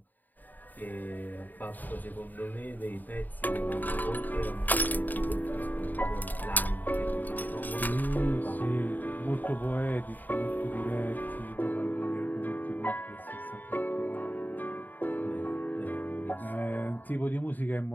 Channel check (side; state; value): right; late; 0.087 ms